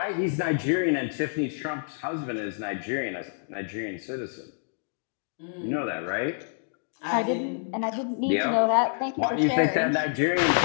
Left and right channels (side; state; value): right; silent; digital silence